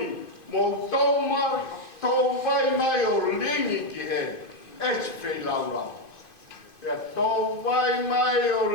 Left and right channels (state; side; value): late; right; 2.5 ms